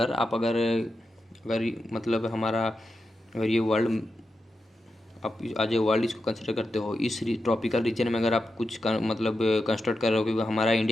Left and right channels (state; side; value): normal; both; correlation 0.89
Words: आप अगर अगर मतलब हमारा अगर ये वर्ल्ड आप आज वर्ल्ड इसको कंसिडर करते हो, इस ट्रॉपिकल रीजन में अगर आप कुछ मतलब कंस्ट्रक्ट कर रहे हो, क्योंकि हमारा